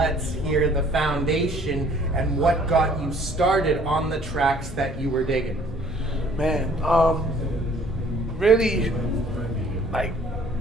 hear the foundation and what got you started on the tracks that you were digging. Man, really, like,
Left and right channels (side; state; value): both; normal; correlation 0.57